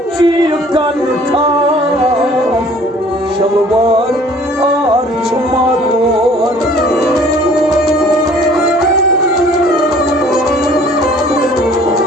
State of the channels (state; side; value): normal; both; correlation 0.53